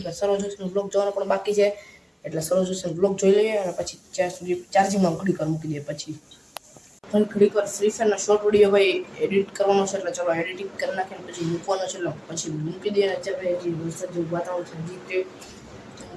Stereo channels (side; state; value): both; identical; correlation 1.00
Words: સરોજેશન બ્લોગ જોવાનો પણ બાકી છે એટલે સરોજેશન બ્લોગ જોઈ લઈએ અને પછી ત્યાં સુધી ચાર્જિંગમાં ઘડીક મૂકી દઈએ. પછી ઘડીક વાર ફ્રી ફાયરનો શોર્ટ વિડીયો ભાઈ એડિટ કરવાનો છે એટલે ચલો એડિટિંગ કરી નાખીને પછી મૂકવાનો છે એટલે પછી મૂકી દઈએ. અત્યારે જે વરસાદ જેવું વાતાવરણ છે